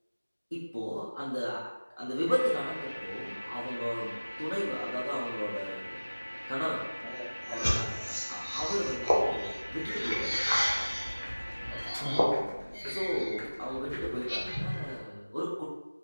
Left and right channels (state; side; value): inverted; both; correlation -1.00